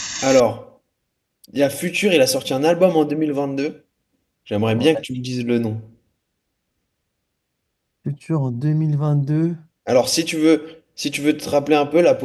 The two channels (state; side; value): identical; both; correlation 1.00